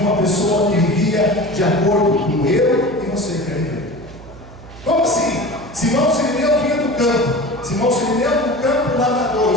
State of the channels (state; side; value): noise; right; hum, 18 dB below the sound